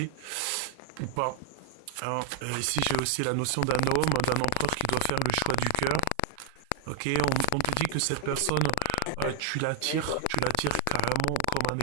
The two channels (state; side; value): different; both; correlation 0.00